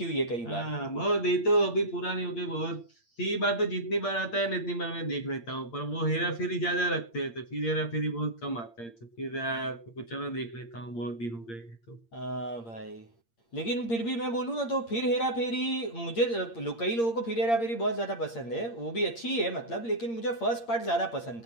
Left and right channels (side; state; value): right; late; 8.7 ms